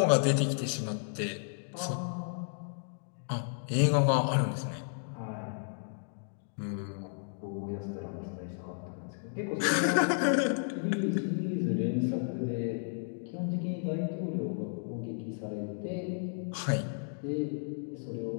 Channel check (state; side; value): silent; right; digital silence